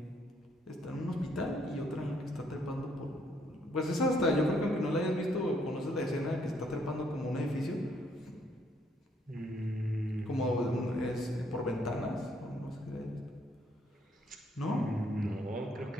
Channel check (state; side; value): normal; both; correlation 0.69